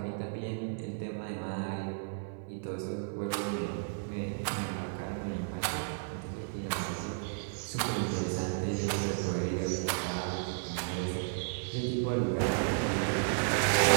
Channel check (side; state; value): left; silent; 56 dB below the other